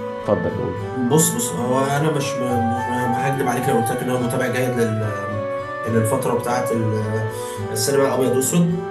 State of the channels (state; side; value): identical; both; correlation 1.00